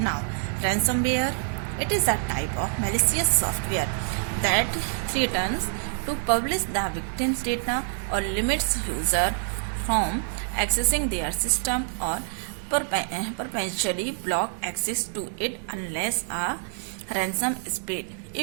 ransomware. It is a type of malicious software that threatens to publish the victim's data or limits user from accessing their system or perpetually block access to it unless a ransom is paid.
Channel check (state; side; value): silent; left; 61 dB below the other